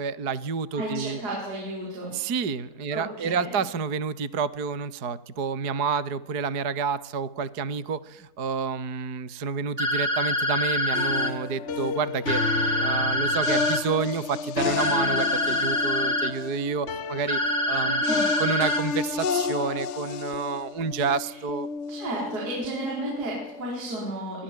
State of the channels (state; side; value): late; left; 4.7 ms